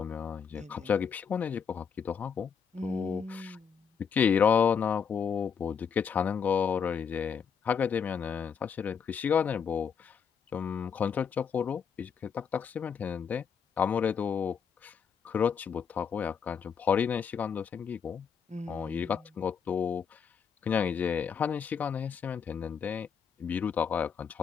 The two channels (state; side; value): quieter; right; 6.9 dB